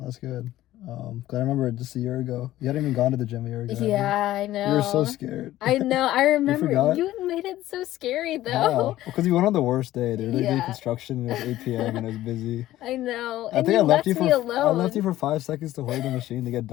good. 'Cause I remember just a year ago, you hadn't even gone to the gym a year ago. Yeah, I know. You were so scared. I know. I remember. You You made it so scary though. Because you went on the worst day. They were doing construction and it was 8 p.m. and it was busy. I know. I And think you I left you me alone. I left you for 5 seconds to hold the machine to get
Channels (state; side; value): quieter; right; 14.7 dB